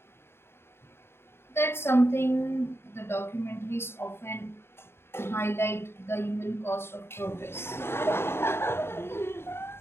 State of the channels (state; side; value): late; right; 0.12 ms